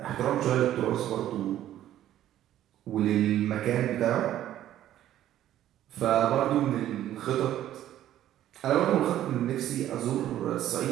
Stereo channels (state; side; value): quieter; left; 12.4 dB